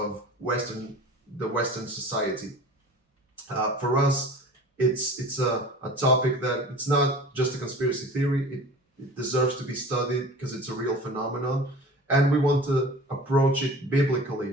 the Western society. For us, it's a topic that it's not just a conspiracy theory. It deserves to be studied because it's a real phenomenon. And we want to approach it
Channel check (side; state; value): both; normal; correlation 0.40